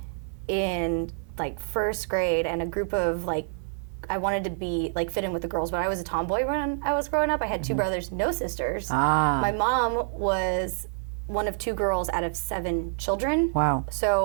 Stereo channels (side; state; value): left; silent; digital silence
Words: in like first grade and a group of like, I wanted to be like fit in with the girls, but I was a tomboy when I was growing up. I had 2 brothers, no sisters. Ah. My mom was one of 2 girls out of 7 children. Wow.